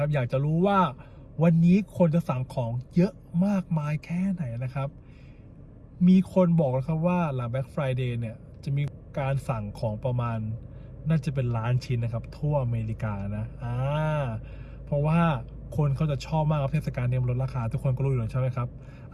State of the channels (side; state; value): both; identical; correlation 1.00